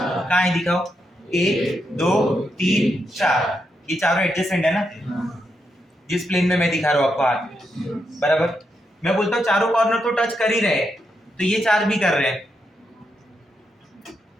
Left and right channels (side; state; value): both; normal; correlation 0.82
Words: कहाँ है दिखाओ? 1 2 3 4। ये चारों एडजेसेंट है ना, जिस प्लेन में मैं दिखा रहा हूँ आपको हाथ, बराबर। मैं बोलता हूँ चारों कॉर्नर तो टच कर ही रहे हैं, तो ये 4 भी कर रहे हैं।